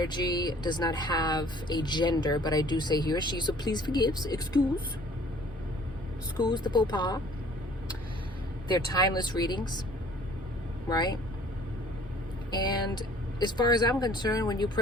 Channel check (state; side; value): normal; both; correlation 0.54